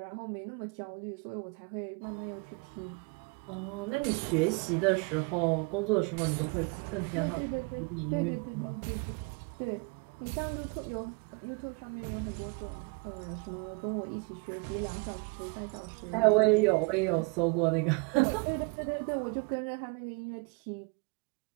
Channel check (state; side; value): quieter; left; 30.1 dB